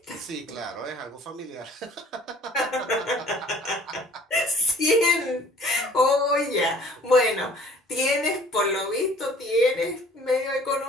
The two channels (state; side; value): normal; both; correlation 0.52